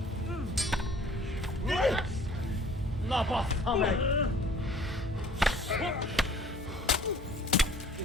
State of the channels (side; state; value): both; normal; correlation 0.53